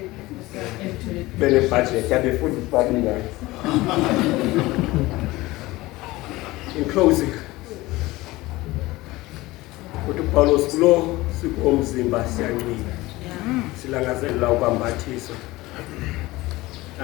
Bene budget yabe futhi babinga. In closing, uPaulos kulo sikomzimba siyanqina. Silangazelela ukwambathiswa.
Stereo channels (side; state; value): right; quieter; 19.5 dB